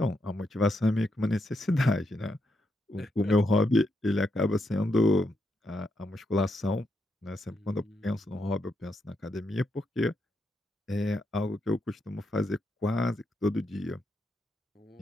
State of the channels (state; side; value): normal; both; correlation 0.81